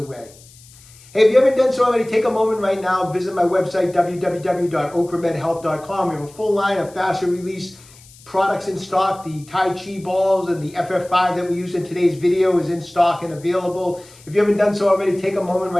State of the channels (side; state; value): left; noise; hiss, 24 dB below the sound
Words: Hey, if you haven't done so already, take a moment right now. Visit my website, www.OcraMedHealth.com. We have a full line of fascia release products in stock. The Tai Chi balls and the FF5 that we used in today's video is in stock and available. If you haven't done so already, take a moment